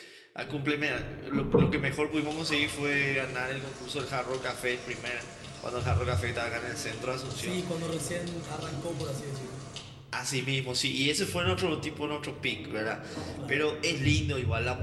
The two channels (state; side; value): identical; both; correlation 1.00